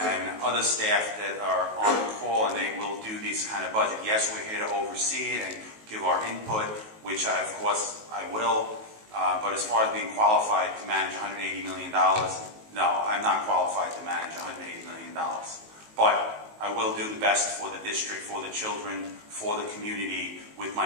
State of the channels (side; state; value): left; late; 19 ms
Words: other staff that are on call, and they will do these kind of budget. Yes, we're here to oversee it and give our input, which of course I will. But as far as being qualified to manage $180 million, no, I'm not qualified to manage $180 million. But I will do the best for the district, for the children, for the community, with